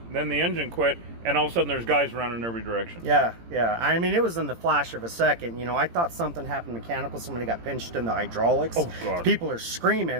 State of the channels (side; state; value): left; late; 17 ms